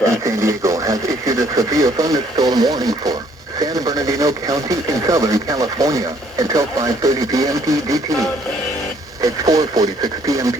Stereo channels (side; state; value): both; normal; correlation 0.63